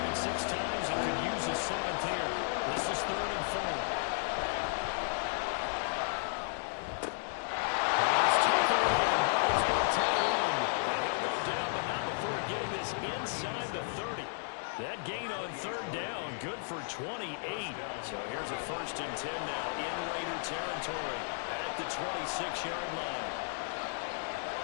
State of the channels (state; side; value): silent; right; digital silence